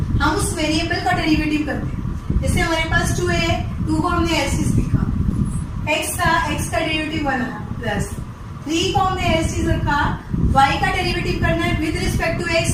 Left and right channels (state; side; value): identical; both; correlation 1.00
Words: हम उस वेरिएबल का डेरिवेटिव करते हैं। जैसे हमारे पास 2 है, 2 को हमने ऐसे लिखा, x था, x का डेरिवेटिव 1 आया, प्लस 3 को हमने ऐसे रखा, y का डेरिवेटिव करना है with respect to x,